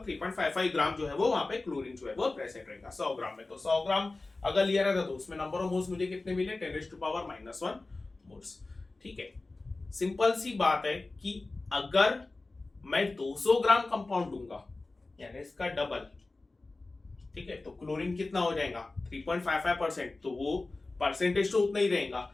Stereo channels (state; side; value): quieter; right; 3.3 dB